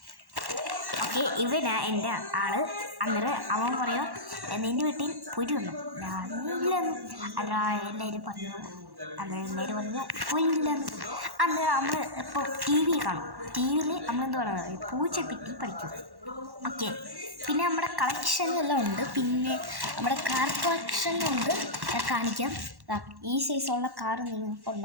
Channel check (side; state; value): left; late; 1.1 ms